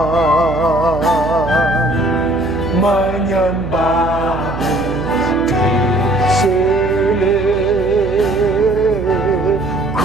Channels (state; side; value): noise; right; hum, 9 dB below the sound